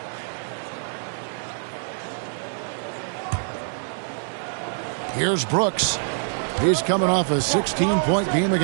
Here's Brooks. He's coming off a 16-point game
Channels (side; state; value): left; silent; digital silence